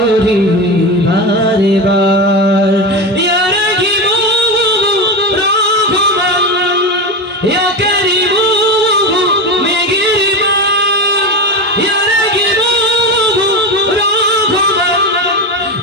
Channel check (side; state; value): both; normal; correlation 0.20